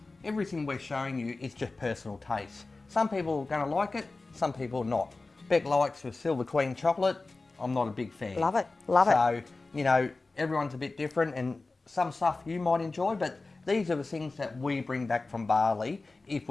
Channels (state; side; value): quieter; right; 3.5 dB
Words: everything we're showing you is just personal taste. Some people are going to like it, some people not. Beck likes the Silver Queen chocolate. I'm not a big fan. Love it, love it. So, you know, everyone's a bit different, and some stuff you might enjoy, but these are the things that we bring back from Bali if